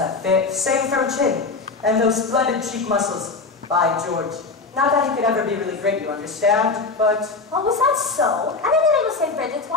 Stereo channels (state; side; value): quieter; right; 4.0 dB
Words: same firm chin and those splendid cheek muscles. By George. Not that he could ever be really great, you understand, but... Oh, was that so? And in the name of St. Bridget's,